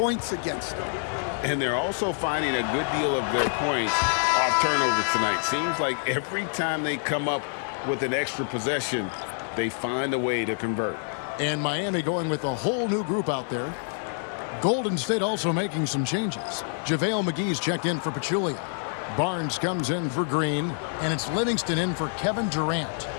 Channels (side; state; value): right; silent; 60 dB below the other